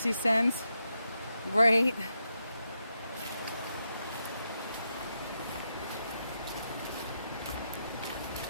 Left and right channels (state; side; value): inverted; both; correlation -0.84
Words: he sends, right?